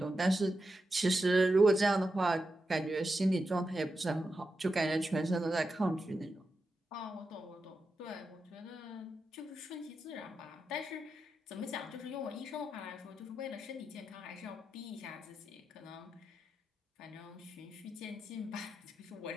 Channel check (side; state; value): both; normal; correlation 0.88